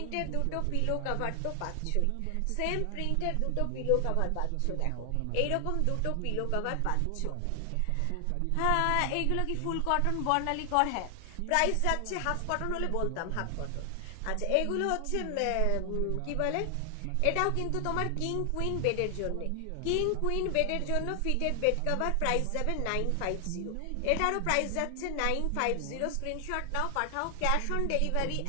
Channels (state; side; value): different; both; correlation 0.00